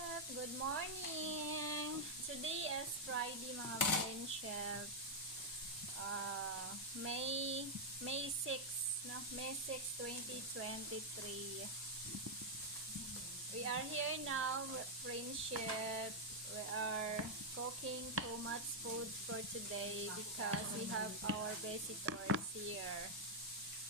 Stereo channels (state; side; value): normal; both; correlation -0.02